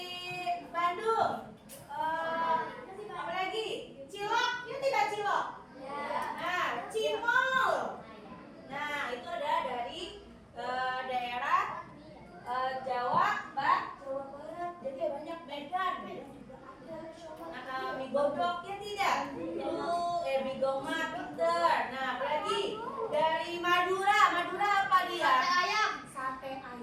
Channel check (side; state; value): both; identical; correlation 1.00